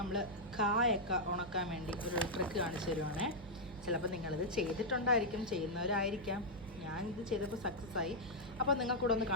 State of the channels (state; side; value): noise; right; hum, 18 dB below the sound